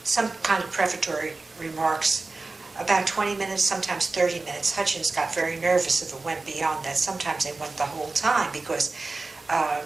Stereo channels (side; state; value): left; quieter; 3.5 dB